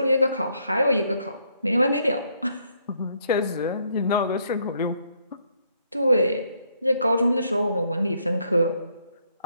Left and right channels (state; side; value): inverted; both; correlation -0.71